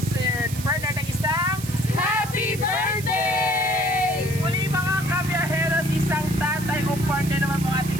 Bernard ng isang Happy Birthday! Muli mga kabiyaheros, isang tatay o partner naman po ating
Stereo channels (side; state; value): right; noise; hiss, 12 dB below the sound